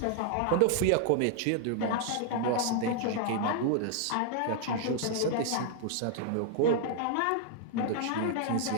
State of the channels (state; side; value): different; both; correlation 0.00